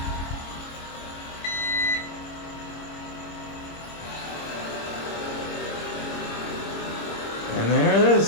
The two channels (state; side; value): late; right; 26 ms